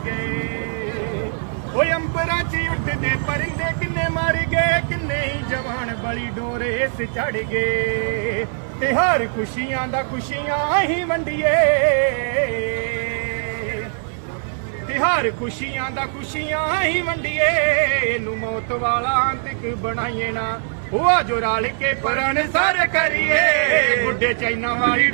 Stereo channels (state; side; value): silent; left; 59 dB below the other